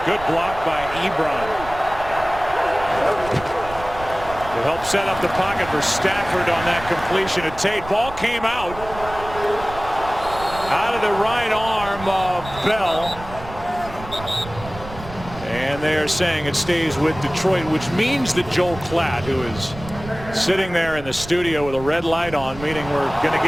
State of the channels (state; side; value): noise; right; rumble, 14 dB below the sound